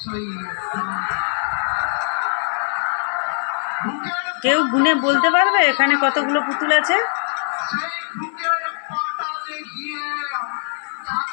চাই। কেউ গুনে বলতে পারবে এখানে কতগুলো পুতুল আছে? সেই বুকের পাতালে গিয়ে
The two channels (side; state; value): right; silent; digital silence